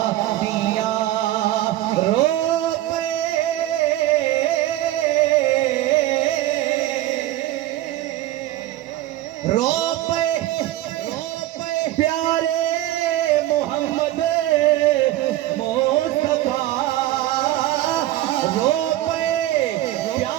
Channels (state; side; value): quieter; left; 15.0 dB